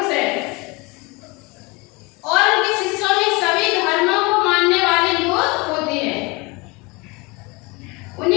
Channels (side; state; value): right; quieter; 26.2 dB